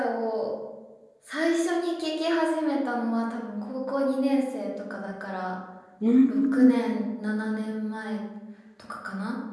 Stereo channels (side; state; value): both; identical; correlation 1.00